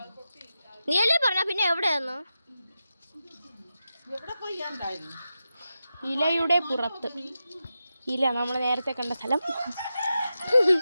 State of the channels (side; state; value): both; inverted; correlation -0.90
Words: നീയല്ലേ പറഞ്ഞ പിന്നെ എവിടെയായിരുന്നു? ഇലയുടെ പുറത്ത്. ഇല നമ്മൾ നേരത്തെ കണ്ട സ്ഥലം.